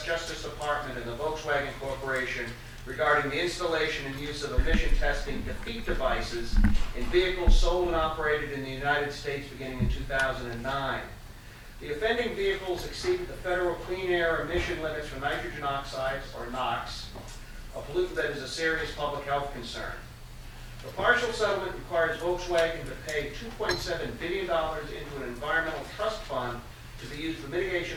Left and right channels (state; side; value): identical; both; correlation 1.00